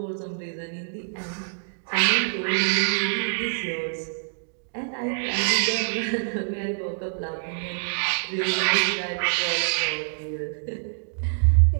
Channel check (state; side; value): silent; left; digital silence